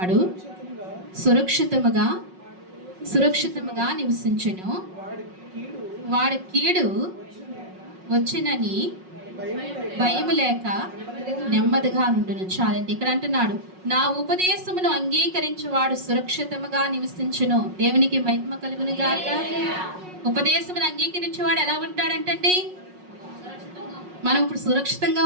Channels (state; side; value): late; left; 5.4 ms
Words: సురక్షితముగా నివసించును, వాడి కీడు వచ్చినని భయము లేక నెమ్మదిగా నుండును. చాలండి. ఇక్కడ అంటున్నాడు, నా ఉపదేశమును అంగీకరించువాడు సురక్షితముగా నివసించును. దేవునికి మహిమ కలుగును గాక. ఉపదేశమును అంగీకరించేవాడు ఎలా ఉంటాడంటండి? మనం ఇప్పుడు సురక్షితంగా